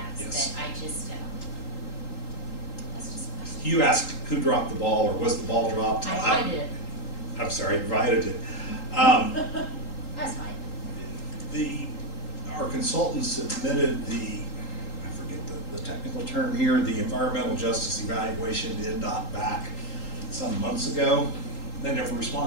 Yes. but I just, that's just a question. you asked who dropped the ball, or was the ball dropped? I did. I'm sorry, invited it. That's fine. Our consultant submitted I forget the technical term here, the environmental justice evaluation to NDOT back some months ago. They never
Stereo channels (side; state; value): right; late; 3.8 ms